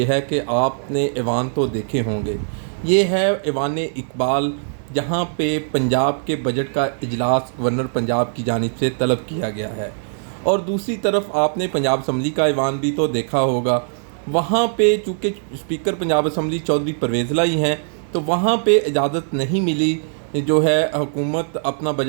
ہے کہ آپ نے ایوان تو دیکھے ہوں گے۔ یہ ہے ایوان اقبال، جہاں پہ پنجاب کے بجٹ کا اجلاس گورنر پنجاب کی جانب سے طلب کیا گیا ہے، اور دوسری طرف آپ نے پنجاب اسمبلی کا ایوان بھی تو دیکھا ہوگا۔ وہاں پہ چونکہ اسپیکر پنجاب اسمبلی چودھری پرویز الہی ہیں، تو وہاں پہ اجازت نہیں ملی، جو ہے حکومت اپنا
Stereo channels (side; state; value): left; silent; digital silence